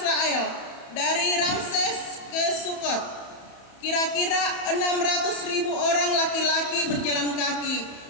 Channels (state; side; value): late; right; 31 ms